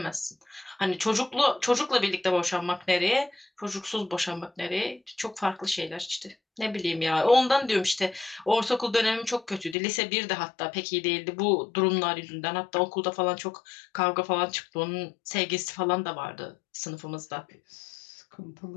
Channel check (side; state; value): right; drops out; at 9.8 s